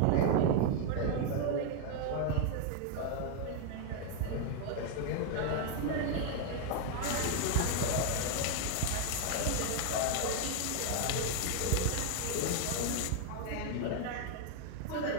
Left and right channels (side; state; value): both; different; correlation 0.01